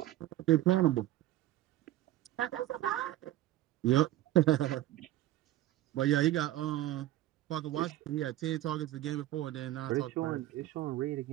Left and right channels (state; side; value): quieter; left; 14.5 dB